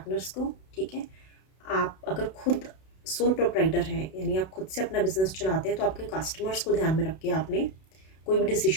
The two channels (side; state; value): right; late; 32 ms